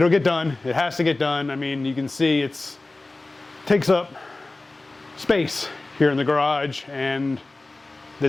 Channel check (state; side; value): quieter; right; 3.1 dB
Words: get done. It has to get done. I mean, you can see it takes up space here in the garage, and